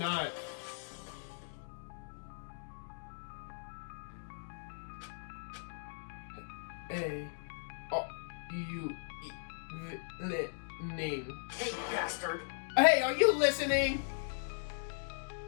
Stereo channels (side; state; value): right; silent; digital silence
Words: Hey... Oh, you... name. Hey, bastard. Hey, are you listening?